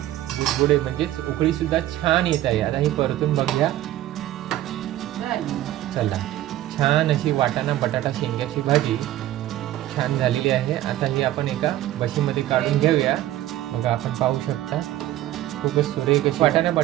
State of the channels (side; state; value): left; quieter; 14.1 dB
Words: बुडबुडे म्हणजेच उकळी सुद्धा छान येत आहे. आता ही परतून बघूया. चला, छान अशी वाटाणा बटाटा शेंग्याची भाजी छान झालेली आहे. आता ही आपण एका बशीमध्ये काढून घेऊया. बघा, आपण पाहू शकता खूपच सुरेख अशी वाटाणा